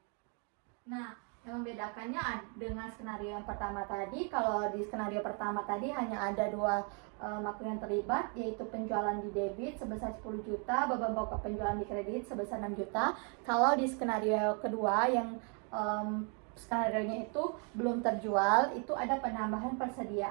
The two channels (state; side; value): quieter; left; 37.5 dB